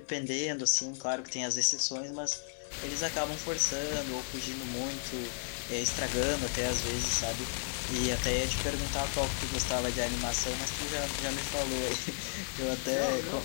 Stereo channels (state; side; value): silent; right; digital silence